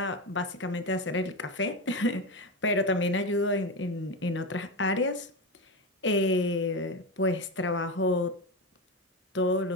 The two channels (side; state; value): both; normal; correlation 0.17